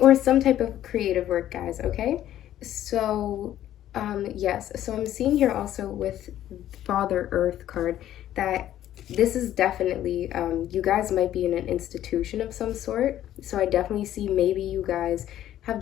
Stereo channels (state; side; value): quieter; right; 12.2 dB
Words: some type of creative work, guys, okay? So yes, so I'm seeing here also with Father Earth card that this is definitely, you guys might be in an institution of some sort. So I definitely see maybe you guys have